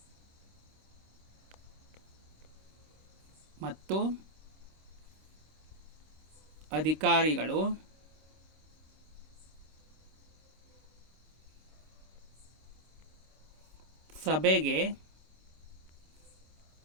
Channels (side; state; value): left; late; 26 ms